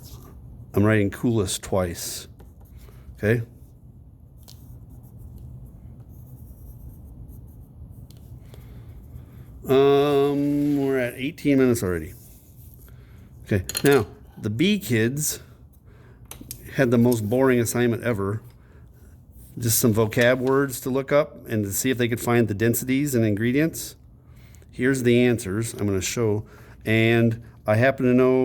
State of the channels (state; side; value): identical; both; correlation 1.00